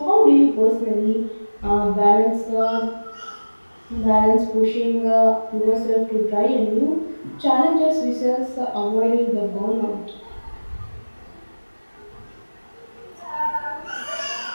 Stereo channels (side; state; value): both; inverted; correlation -1.00